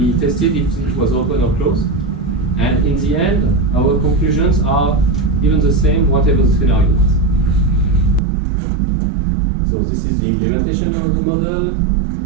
tested if it was open or closed. And in the end, our conclusions are even the same, whatever the scenario was. So this is the implementation of the model,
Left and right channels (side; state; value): left; drops out; at 8.2 s